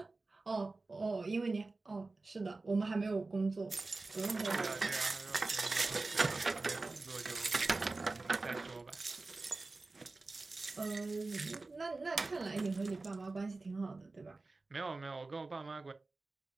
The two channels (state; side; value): quieter; left; 3.5 dB